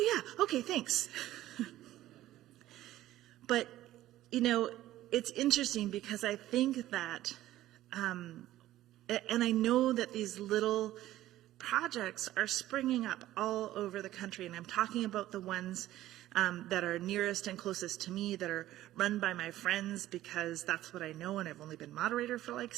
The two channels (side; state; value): left; quieter; 14.6 dB